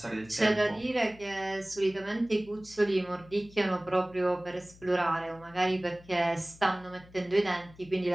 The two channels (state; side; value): noise; left; hum, 23 dB below the sound